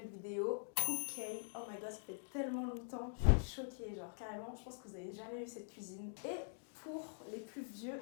vidéo Cook-K. Oh my god, ça fait tellement longtemps, je suis choquée, genre carrément, je pense que vous n'avez jamais vu cette cuisine. Et pour les plus vieux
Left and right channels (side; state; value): right; silent; digital silence